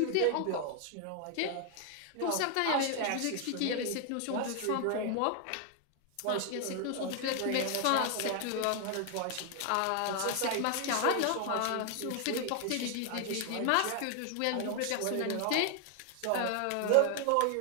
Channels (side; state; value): both; different; correlation 0.00